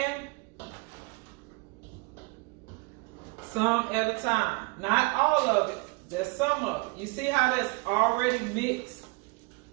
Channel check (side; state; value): left; quieter; 27.6 dB